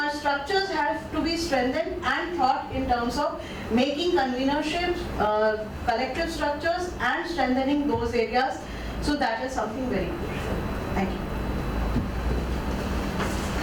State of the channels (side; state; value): both; identical; correlation 1.00